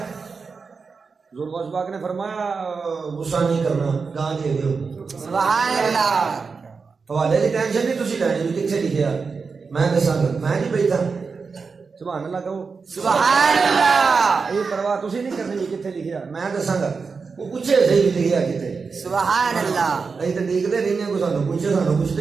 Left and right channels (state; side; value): quieter; left; 4.9 dB